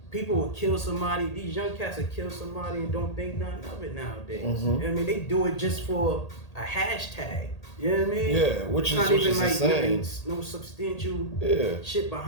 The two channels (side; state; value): right; late; 1.8 ms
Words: People will kill somebody. These young cats will kill somebody and don't think nothing of it nowadays. You know what I mean? They do it just for a hashtag. You know what I mean? Yeah, which it's is like insane. No substantial shit